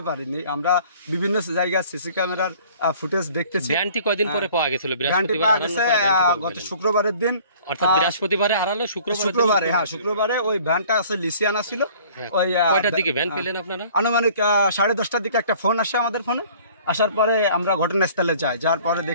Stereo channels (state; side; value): inverted; both; correlation -0.52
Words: পারিনি। আমরা বিভিন্ন জায়গায় সিসি ক্যামেরার ফুটেজ দেখতেছি। ভ্যানটি কয়দিন পরে পাওয়া গেছিল? গত শুক্রবারের দিন, অর্থাৎ বৃহস্পতিবারে হারালো, শুক্রবারে, হ্যাঁ, শুক্রবারে ওই ভ্যানটা আছে লিসিয়ানা ছিল। ওই কয়টার দিকে ভ্যান পেলেন আপনারা? আনুমানিক 10:30টার দিকে একটা ফোন আসে আমাদের ফোনে। আসার পরে আমরা ঘটনাস্থলে যাই, যার পরে